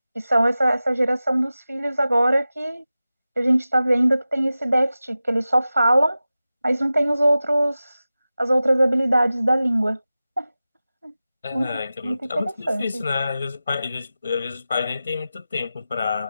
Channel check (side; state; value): both; inverted; correlation -0.94